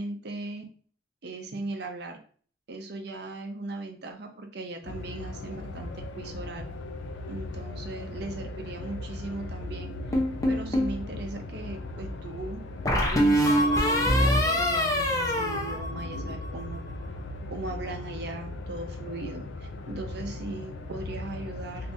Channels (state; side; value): normal; both; correlation 0.48